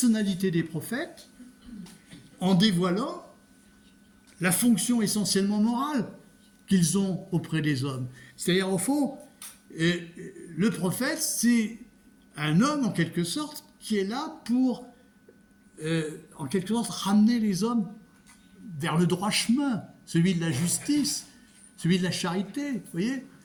des prophètes en dévoilant la fonction essentiellement morale qu'ils ont auprès des hommes. C'est-à-dire, au fond, le prophète, c'est un homme, en quelque sorte, qui est là pour, en quelque sorte, ramener les hommes vers le droit chemin, celui de la justice, celui de la charité, vous voyez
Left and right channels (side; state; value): both; identical; correlation 1.00